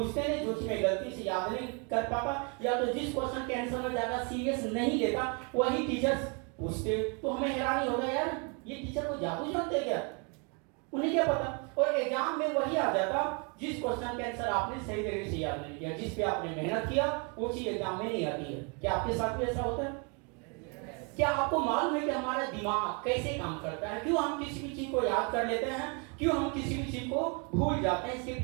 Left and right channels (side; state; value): left; quieter; 34.8 dB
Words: नहीं, जो चीज मैं गलती से याद नहीं कर पाता, या तो जिस क्वेश्चन के आंसर में ज्यादा सीरियस नहीं लेता वही टीचर्स पूछते। तो हमें हैरानी होगा, यार ये टीचर को जादू जानते क्या, उन्हें क्या पता। और एग्जाम में वही आ जाता जिस क्वेश्चन के आंसर आपने सही तरीके से याद नहीं किया, जिस पे आपने मेहनत किया, वो चीज एग्जाम में नहीं आती है। क्या आपके साथ भी ऐसा होता है? क्या आपको मालूम है कि हमारा दिमाग कैसे काम करता है? क्यों हम किसी भी चीज को याद कर लेते हैं, क्यों हम किसी भी चीज को भूल जाते हैं? इसके